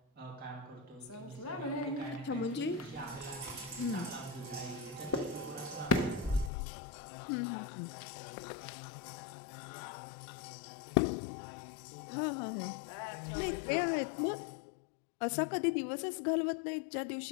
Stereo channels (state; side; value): drops out; right; at 6.5 s